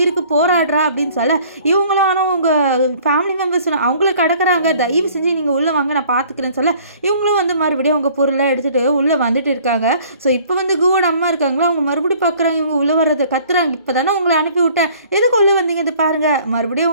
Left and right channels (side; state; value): both; inverted; correlation -0.54